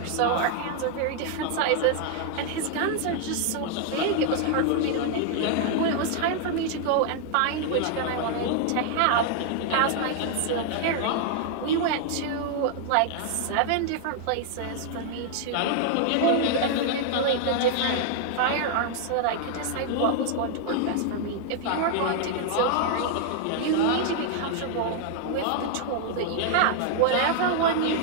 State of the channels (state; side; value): different; both; correlation 0.00